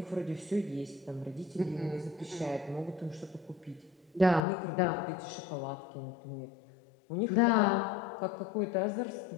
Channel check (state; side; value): drops out; right; at 4.4 s